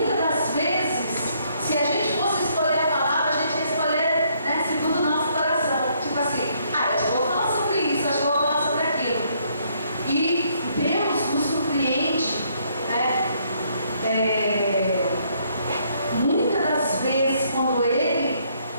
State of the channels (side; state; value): both; inverted; correlation -0.69